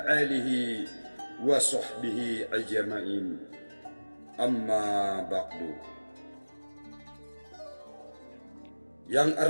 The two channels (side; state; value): both; inverted; correlation -1.00